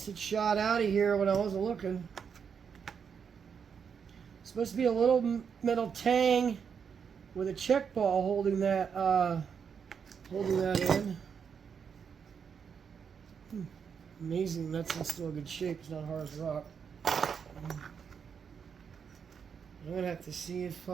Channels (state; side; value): quieter; left; 6.8 dB